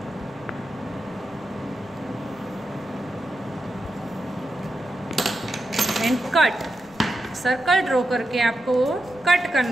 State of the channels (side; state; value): right; noise; rumble, 27 dB below the sound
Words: And cut. Circle draw करके आपको कट